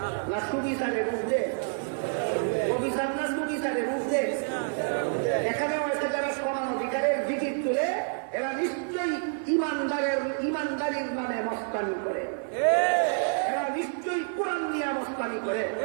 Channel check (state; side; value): silent; left; 59 dB below the other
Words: না সুবিচারের ঊর্ধ্বে? অবিচার না সুবিচারের ঊর্ধ্বে? এখানেও এসে যারা সমান অধিকারের জিকির তুলে এরা নিশ্চয়ই ইমানদারির নামে মস্তানি করে, এরা নিশ্চয়ই কোরআন নিয়ে মস্তানি করে,